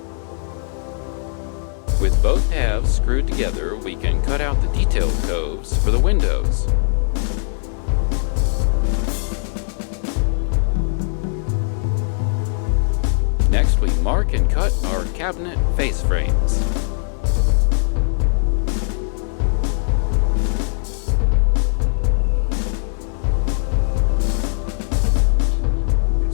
With both halves screwed together, we can cut out the detailed coves for the windows. Next, we mark and cut our cabinet face frames.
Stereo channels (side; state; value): right; silent; digital silence